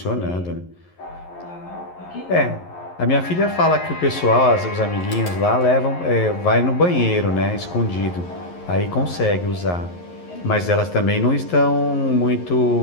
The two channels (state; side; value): late; right; 11 ms